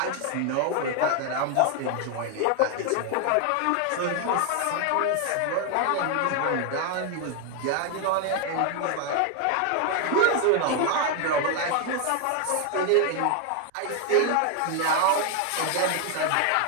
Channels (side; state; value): both; different; correlation 0.01